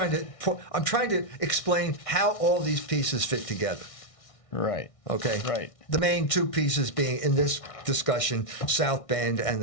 to explain how all these pieces fit together. Right. Okay. Right. The main two pieces being in this discussion, South Bend and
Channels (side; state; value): right; late; 1.6 ms